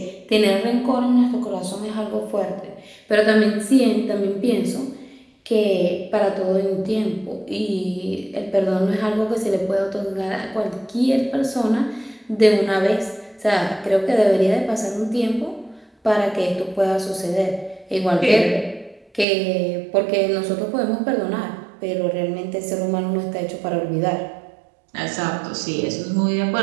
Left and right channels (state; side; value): drops out; left; at 19.2 s